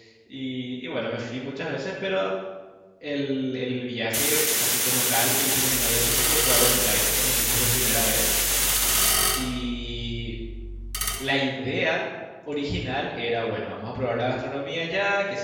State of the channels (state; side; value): identical; both; correlation 1.00